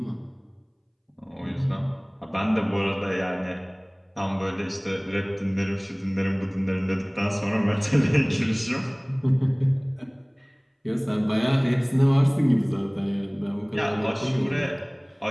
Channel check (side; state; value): both; identical; correlation 1.00